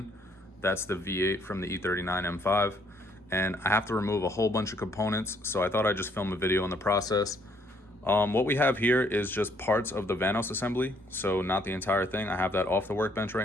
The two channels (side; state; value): both; normal; correlation 0.67